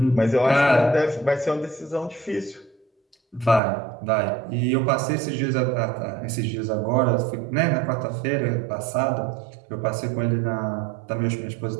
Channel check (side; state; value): left; drops out; at 3.6 s